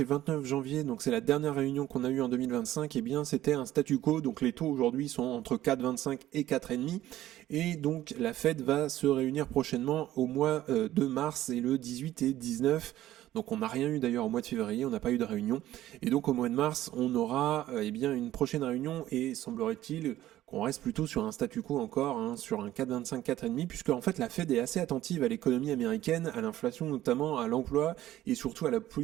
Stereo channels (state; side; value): quieter; left; 14.0 dB